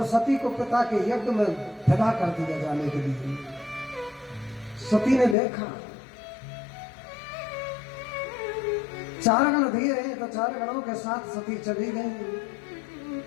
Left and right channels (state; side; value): drops out; right; at 5.4 s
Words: सती को पिता के यज्ञ में विदा कर दिया जाने के लिए। सती ने देखा 4 गण दिए हैं तो 4 गणों के साथ सती चली गई,